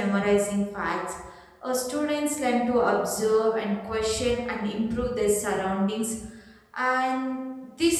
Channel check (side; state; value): both; identical; correlation 1.00